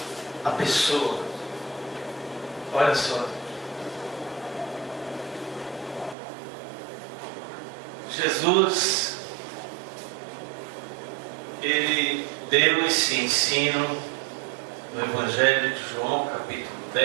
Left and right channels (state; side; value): drops out; left; at 6.2 s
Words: a pessoa. Olha só. Jesus, ele deu esse ensino no Evangelho de João, capítulo